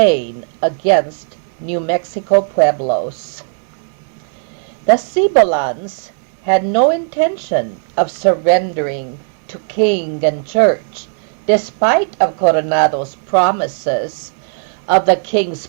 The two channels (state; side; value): silent; left; 69 dB below the other